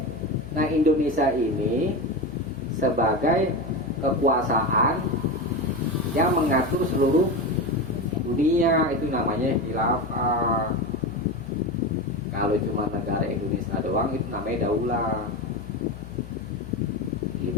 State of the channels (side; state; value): left; noise; hum, 15 dB below the sound